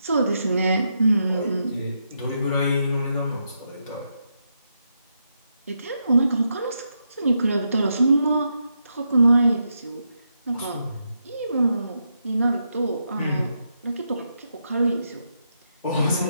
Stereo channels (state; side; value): inverted; both; correlation -0.82